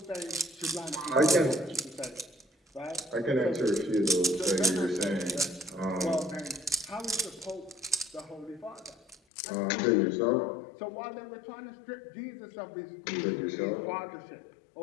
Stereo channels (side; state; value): right; drops out; at 9.2 s